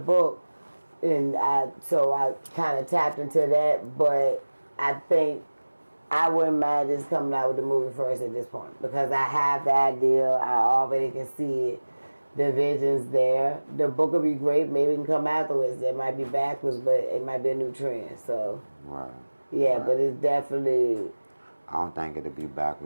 And so I kind of tapped into that, but I think I wouldn't mind just coming out with the movie first at this point, because I have the idea. I already can see it. The vision's there. The book will be great. Maybe it can come afterwards. It might be backwards, but it might be a new trend. So, right. Yeah, right. But it's definitely... I don't think it'll be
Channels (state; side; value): inverted; both; correlation -1.00